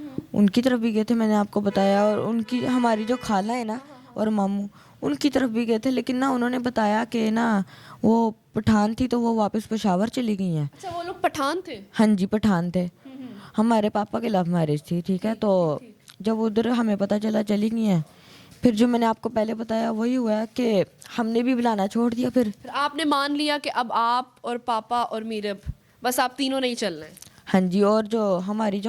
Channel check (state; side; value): identical; both; correlation 1.00